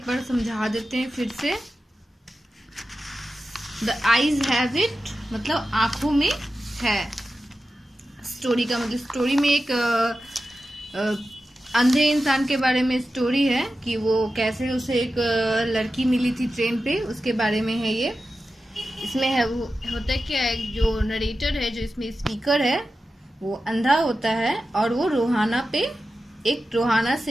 बार समझा देते हैं फिर से। द आईज हैव इट मतलब आंखों में है। स्टोरी का मतलब स्टोरी में एक अंधे इंसान के बारे में स्टोरी है कि वो कैसे उसे एक लड़की मिली थी ट्रेन पे, उसके बारे में है ये। इसमें है वो होता है क्या, एक जो नरेटर है, जो इसमें स्पीकर है, वो अंधा होता है और वो रोहाना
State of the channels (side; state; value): both; normal; correlation 0.93